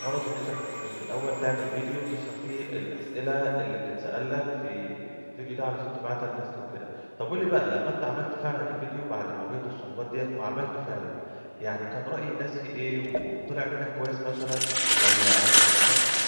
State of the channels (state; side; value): inverted; both; correlation -1.00